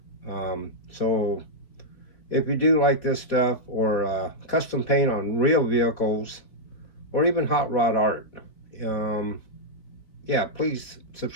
So if you do like this stuff, or custom paint on real vehicles, or even hot rod art, yeah, please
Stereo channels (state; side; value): late; right; 3.9 ms